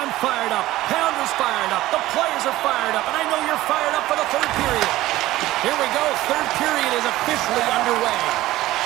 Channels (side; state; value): left; quieter; 16.4 dB